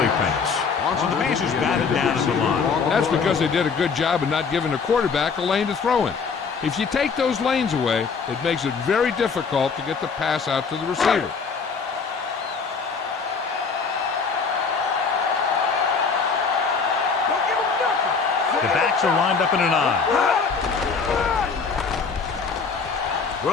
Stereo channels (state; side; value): quieter; right; 5.3 dB